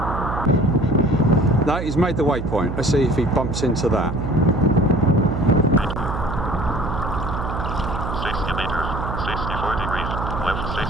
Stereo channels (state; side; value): noise; right; hum, 5 dB below the sound